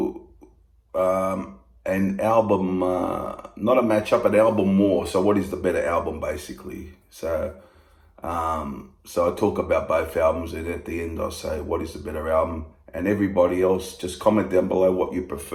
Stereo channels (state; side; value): identical; both; correlation 1.00